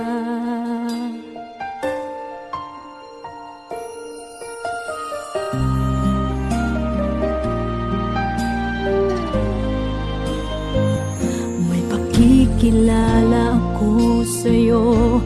Kikilala ako sa'yo,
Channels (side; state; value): both; identical; correlation 1.00